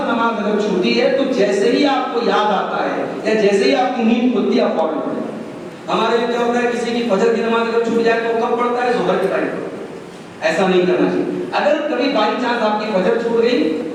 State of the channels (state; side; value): identical; both; correlation 1.00